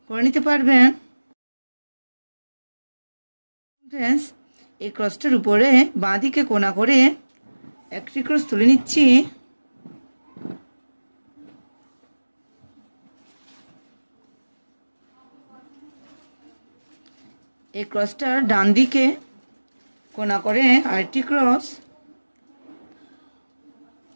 করে নিতে পারবেন। ফ্রেন্ডস, এই ক্রসটার উপরে বাঁ দিকে কোণা করে একটি ক্রস তুলে নিচ্ছি। এই ক্রসটার ডান দিকে কোণা করে আরেকটি ক্রস,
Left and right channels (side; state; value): both; inverted; correlation -1.00